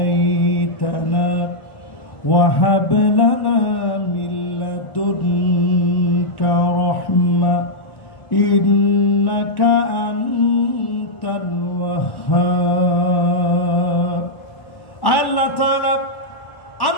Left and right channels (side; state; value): right; late; 1.4 ms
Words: وهب لنا من لدنك رحمة إنك أنت الوهاب। আল্লাহ তাআলা